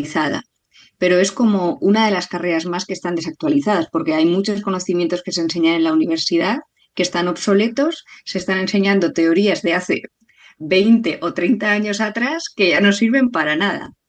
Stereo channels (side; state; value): both; identical; correlation 1.00